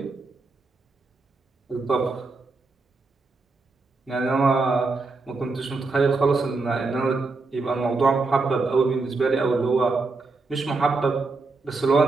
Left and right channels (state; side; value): quieter; left; 3.8 dB